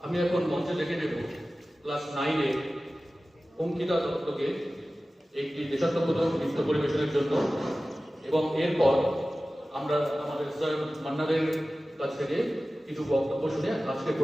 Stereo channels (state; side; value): normal; both; correlation 0.96